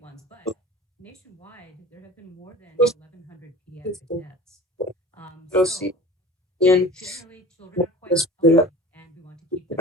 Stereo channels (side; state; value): both; normal; correlation 0.40